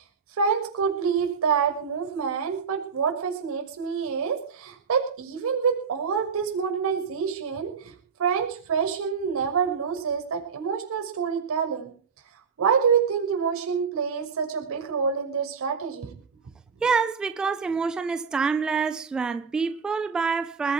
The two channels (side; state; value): left; quieter; 5.9 dB